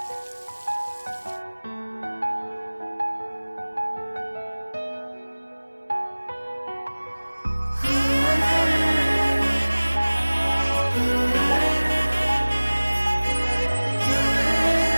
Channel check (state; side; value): inverted; both; correlation -1.00